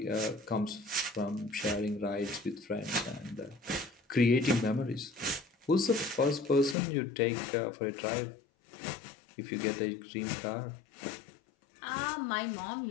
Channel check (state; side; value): drops out; right; at 6.8 s